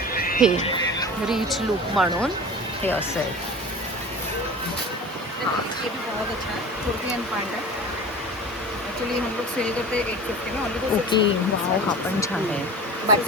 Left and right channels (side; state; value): both; normal; correlation 0.36